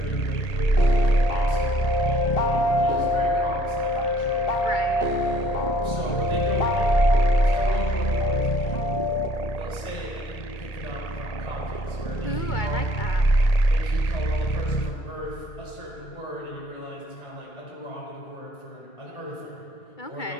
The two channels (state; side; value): late; right; 1.8 ms